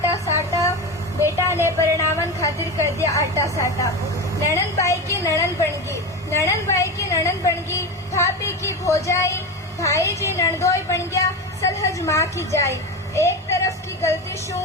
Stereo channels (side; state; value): both; normal; correlation 0.21